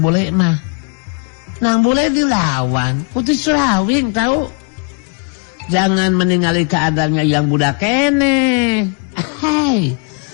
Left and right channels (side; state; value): right; quieter; 34.2 dB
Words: Bule mah. Nang Bule dilawan Putih Surawing tahu. Jangan meninggali keadaannya yang budak kene. Hei,